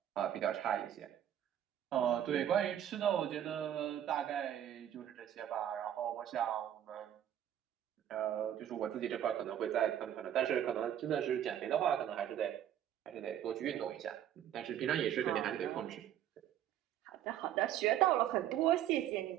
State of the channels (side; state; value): left; quieter; 10.7 dB